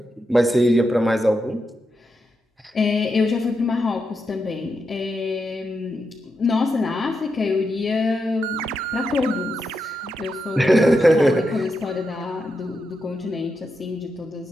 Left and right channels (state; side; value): normal; both; correlation 0.85